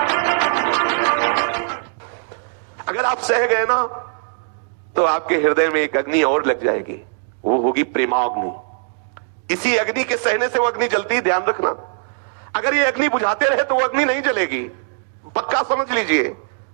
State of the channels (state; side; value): silent; left; digital silence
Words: अगर आप सह गए ना तो आपके हृदय में एक अग्नि और लग जाएगी, वो होगी प्रेमाग्नि। इसी अग्नि के सहने से वो अग्नि जलती है, ध्यान रखना। अगर ये अग्नि बुझाते रहे तो वो अग्नि नहीं जलेगी, पक्का समझ लीजिए,